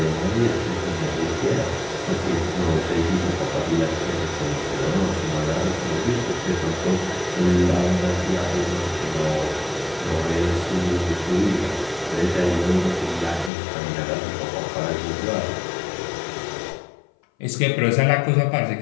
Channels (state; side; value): drops out; right; at 13.5 s